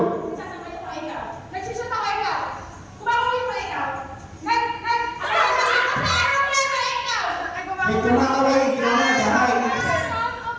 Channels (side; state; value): both; identical; correlation 1.00